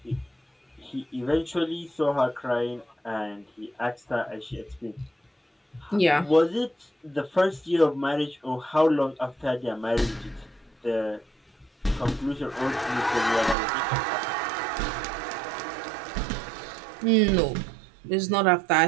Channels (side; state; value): left; drops out; at 13.6 s